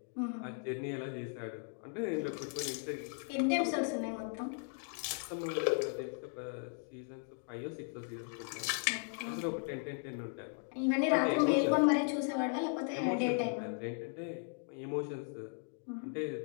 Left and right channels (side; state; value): right; silent; 53 dB below the other